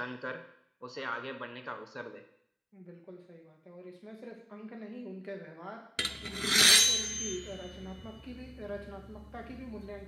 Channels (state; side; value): identical; both; correlation 1.00